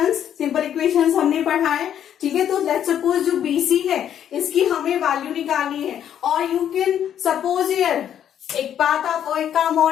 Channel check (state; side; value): quieter; right; 9.8 dB